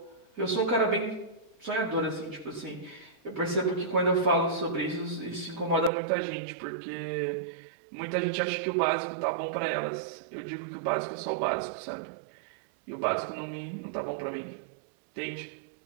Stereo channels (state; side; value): drops out; left; at 5.9 s